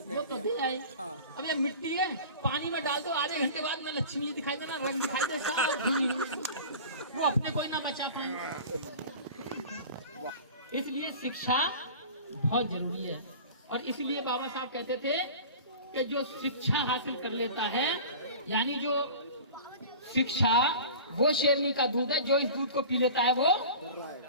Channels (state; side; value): inverted; both; correlation -0.38